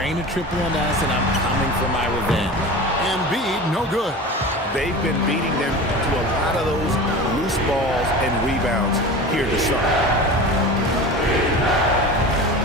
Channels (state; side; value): normal; both; correlation 0.33